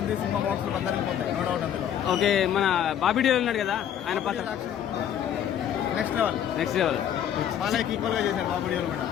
సినిమా బాక్స్ లో అందరికి పోతాయి, నో డౌట్ అందులో. ఓకే, మన బాబీ డియోల్ ఉన్నాడు కదా, ఆయన పాత్ర నెక్స్ట్ లెవెల్. బాలయ్యకి ఈక్వల్ గా చేశారు బాబు డియోల్ కూడా.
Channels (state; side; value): quieter; right; 9.8 dB